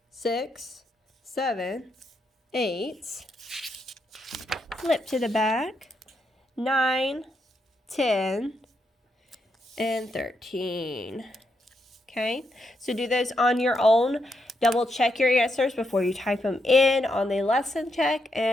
6, 7, 8, flip to the back, 9, 10, and 13. Okay, so do those on your own. Double check your answers before you type them in on the lesson check,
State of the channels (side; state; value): both; normal; correlation 0.81